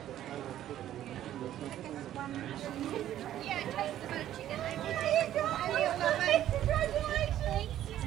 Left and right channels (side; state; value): left; quieter; 12.2 dB